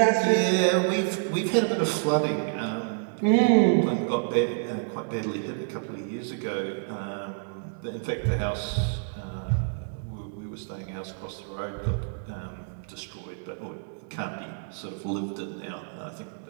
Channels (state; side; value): silent; left; digital silence